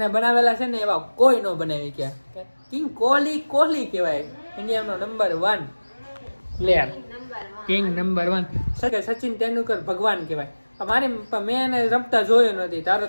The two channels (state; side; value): inverted; both; correlation -1.00